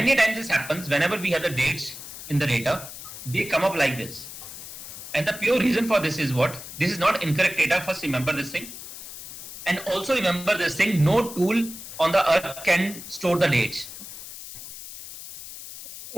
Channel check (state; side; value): noise; left; hiss, 12 dB below the sound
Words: times this happens whenever we have the dates in the data, they come up like this. And the pure reason for this is what? This is not incorrect data. First remember this thing. And also remember this thing, no tool on the earth can store the dates.